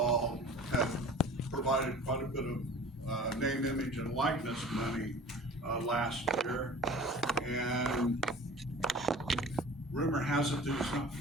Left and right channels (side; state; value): both; normal; correlation 0.42